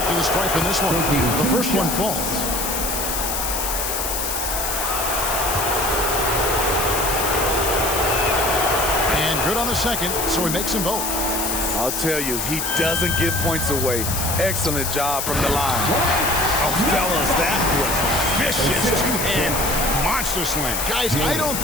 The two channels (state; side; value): noise; left; hiss, 2 dB below the sound